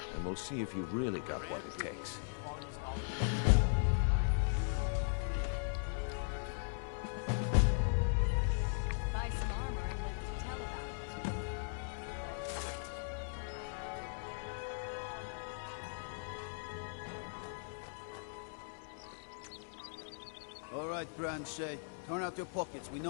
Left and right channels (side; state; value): right; silent; digital silence